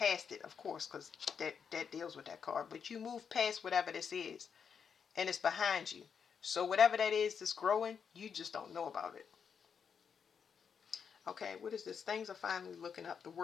it, of course, because that deals with that card. But you move past whatever this is, and it's behind you. So whatever that is that's growing, you just don't know about it. Okay, what is this? Things are finally looking up. The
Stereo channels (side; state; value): right; quieter; 6.8 dB